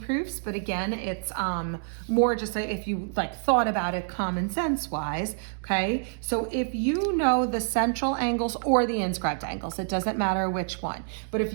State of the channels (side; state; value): left; silent; digital silence